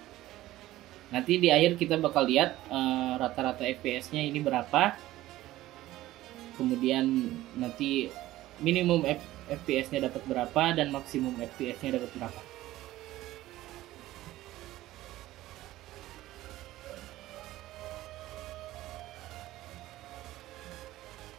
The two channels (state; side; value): quieter; left; 15.9 dB